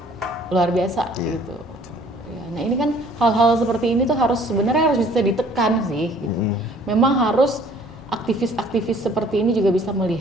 luar biasa gitu. Ya, nah ini kan hal-hal seperti ini tuh sebenarnya harus bisa ditekan sih gitu. Memang harus aktivis-aktivis seperti ini juga bisa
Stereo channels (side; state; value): both; normal; correlation 0.56